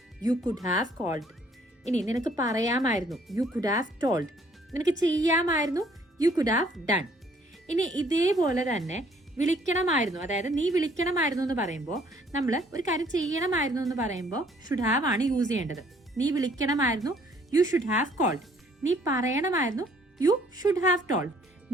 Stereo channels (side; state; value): both; normal; correlation 0.62